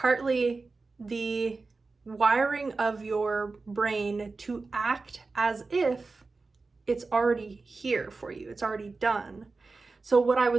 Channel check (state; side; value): quieter; left; 3.9 dB